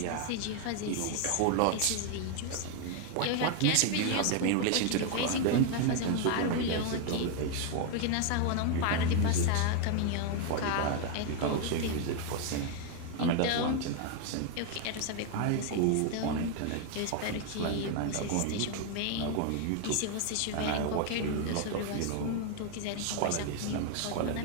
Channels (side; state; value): both; different; correlation 0.00